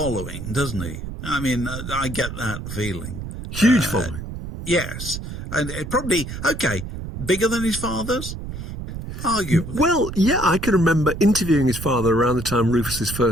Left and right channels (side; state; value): right; noise; rumble, 8 dB below the sound